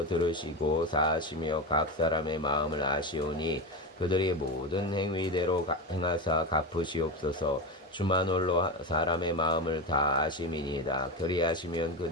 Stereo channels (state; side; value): normal; both; correlation 0.19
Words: 들으시고 사하시며 각 사람의 마음을 아시오니 그들이 모든 행위대로 행하사 갚으시옵소서. 주만 홀로 사람의 마음을 다 아심이니이다. 그리하시면